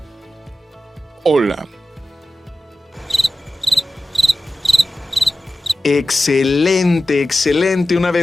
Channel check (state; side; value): normal; both; correlation 0.94